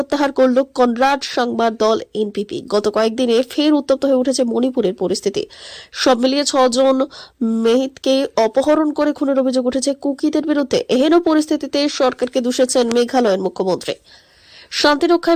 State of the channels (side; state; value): both; identical; correlation 1.00